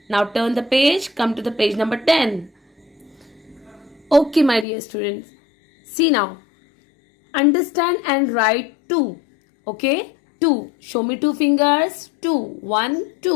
Now turn the page, come to the page number 10. Okay, my dear students. See now. Understand and write 2. Okay? 2. Show me 2 fingers. 2. 1,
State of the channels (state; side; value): drops out; right; at 4.7 s